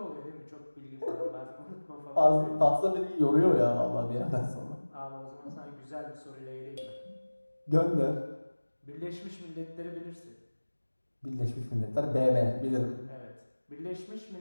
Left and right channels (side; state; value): both; inverted; correlation -1.00